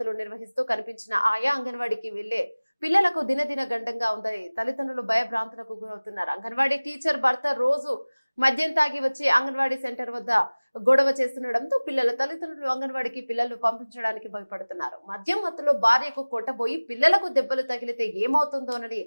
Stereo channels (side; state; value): both; inverted; correlation -1.00